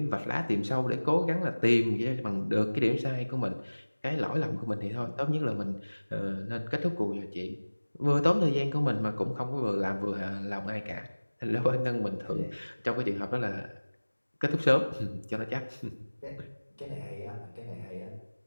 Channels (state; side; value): inverted; both; correlation -1.00